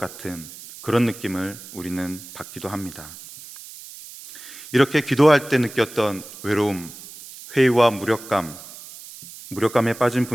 그런 느낌을 우리는 받기도 합니다. 이렇게 기도할 때 느꼈던 외로움, 회의와 무력감에 빠진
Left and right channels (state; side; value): noise; right; hiss, 16 dB below the sound